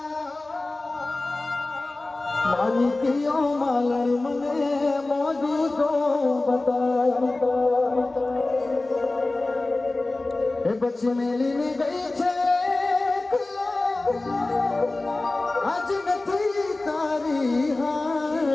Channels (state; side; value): quieter; right; 3.0 dB